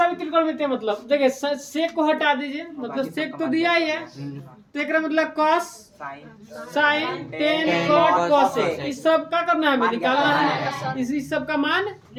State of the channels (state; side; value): identical; both; correlation 1.00